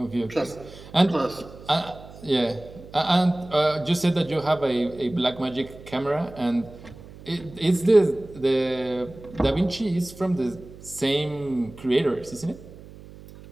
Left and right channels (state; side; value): noise; right; hum, 18 dB below the sound